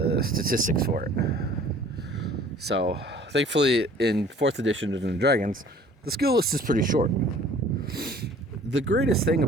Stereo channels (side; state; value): both; normal; correlation 0.52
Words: statistics for it. So thankfully in 4th edition of Dungeons and Dragons, the skill list is pretty short. The greatest thing